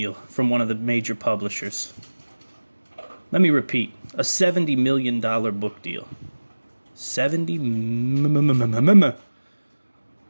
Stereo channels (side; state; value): both; inverted; correlation -1.00